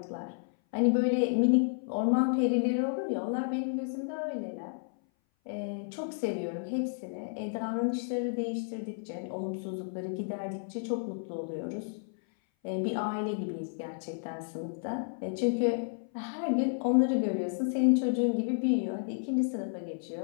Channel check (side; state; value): right; silent; 57 dB below the other